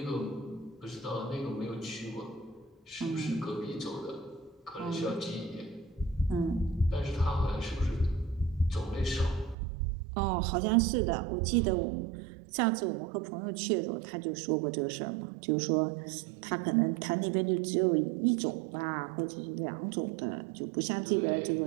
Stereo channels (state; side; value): drops out; left; at 9.6 s